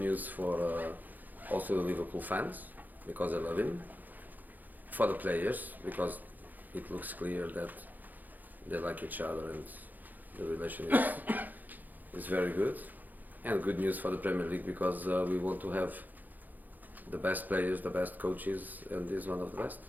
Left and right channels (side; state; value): left; late; 0.084 ms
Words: for also the Liverpool fans because they love him. For the players because it looks clear that they like each other and the relation is very good. And good news for the Premier League because we want to have the best players, the best coaches, and this is one of the best.